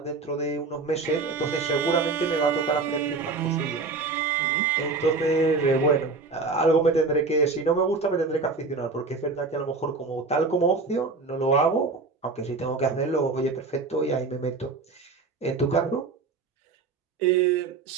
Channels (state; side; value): quieter; left; 4.1 dB